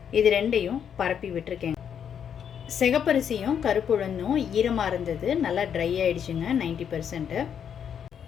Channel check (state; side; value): quieter; right; 8.2 dB